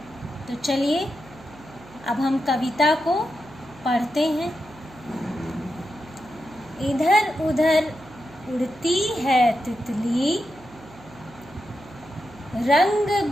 तो चलिए अब हम कविता को पढ़ते हैं। इधर उधर उड़ती है तितली, रंग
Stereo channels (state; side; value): noise; right; hum, 21 dB below the sound